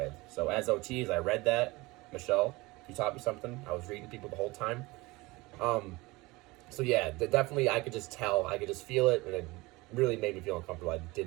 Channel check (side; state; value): left; quieter; 22.3 dB